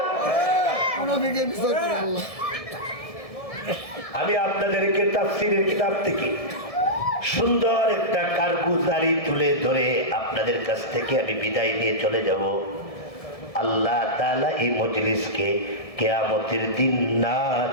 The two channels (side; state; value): right; late; 1.7 ms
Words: আমি আপনাদেরকে তাফসীরের কিতাব থেকে সুন্দর একটা কারগুজারি তুলে ধরে আপনাদের কাছ থেকে আমি বিদায় নিয়ে চলে যাব। আল্লাহ তাআলা এই মজলিসকে কিয়ামতের দিন